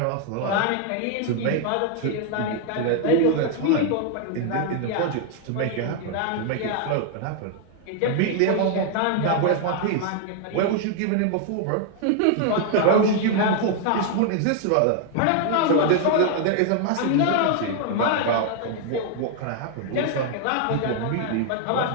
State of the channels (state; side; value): different; both; correlation 0.00